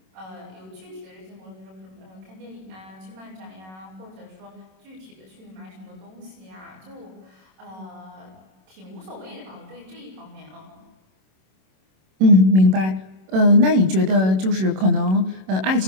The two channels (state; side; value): late; left; 27 ms